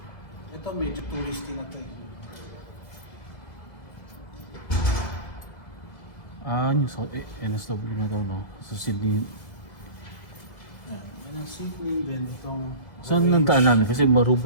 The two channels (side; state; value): right; late; 2.1 ms